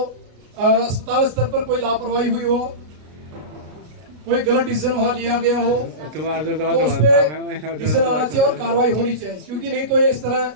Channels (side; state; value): left; late; 33 ms